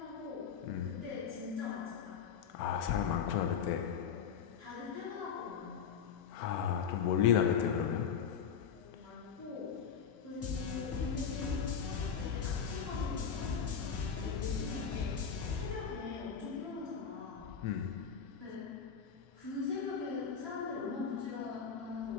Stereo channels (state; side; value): quieter; right; 7.0 dB